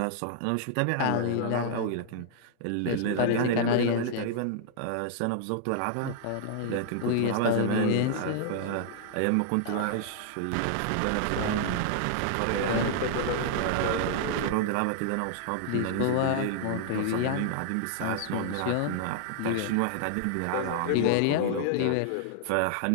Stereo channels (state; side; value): different; both; correlation -0.01